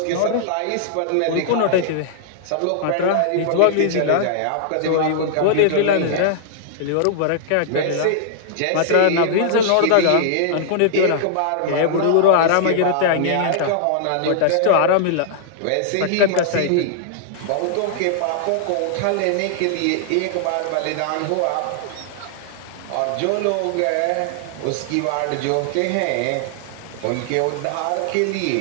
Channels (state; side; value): different; both; correlation -0.01